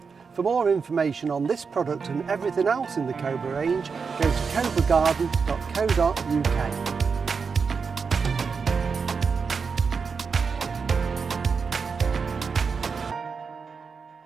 For more information on this product and everything else in the Cobra range, go to cobragarden.co.uk.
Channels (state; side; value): quieter; left; 5.4 dB